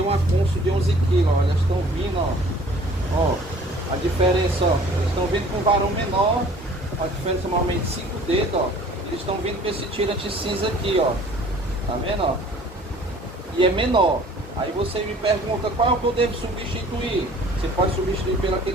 uma Kunso de 11 kg, ó. Elas estão vindo, ó. Ó, a diferença, ó. Eles estão vindo com varão menor. A diferença normalmente 5 dedos, ó. Eles estão vindo com esse tirante cinza aqui, ó. Tá vendo, ó? E é menor. Aí você me pergunta qual é o que eu devo substituir. Você pode substituir pelo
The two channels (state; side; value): normal; both; correlation 0.51